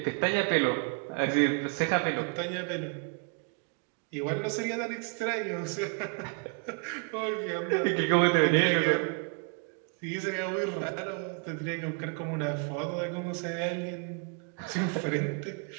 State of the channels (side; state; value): left; quieter; 35.2 dB